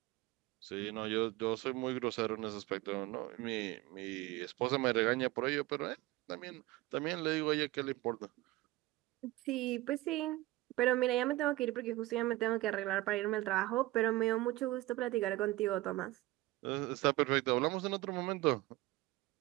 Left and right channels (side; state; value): left; quieter; 18.2 dB